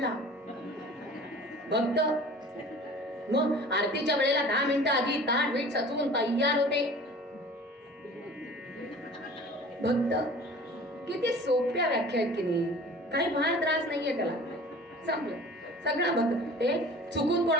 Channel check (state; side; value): normal; both; correlation 0.44